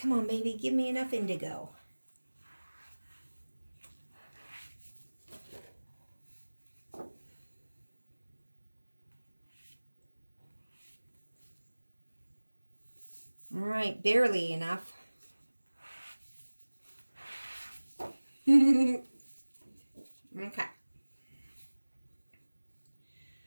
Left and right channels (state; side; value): inverted; both; correlation -1.00